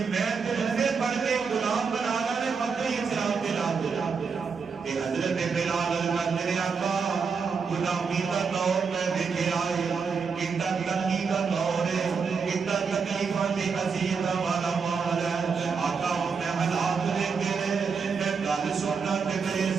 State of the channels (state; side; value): quieter; left; 5.5 dB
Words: میں تے رسے پڑھ کے غلام بنانا نے مکہ اسلام دے لا تے حضرت بلال کہندے نے آقا غلامی دا دور میں دیکھے آئے کتنا تنگی کا دور ہے کتنا تکلیفاں تے اذیتاں والا ماحول ہے آقا میں حالات دیکھے میں گل سننا تے میرے